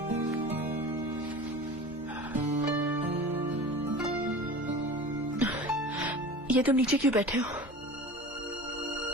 ये तुम नीचे क्यों बैठे हो?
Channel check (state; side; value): normal; both; correlation 0.36